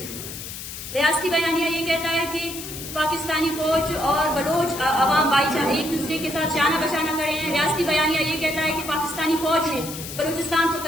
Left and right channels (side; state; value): left; noise; hiss, 10 dB below the sound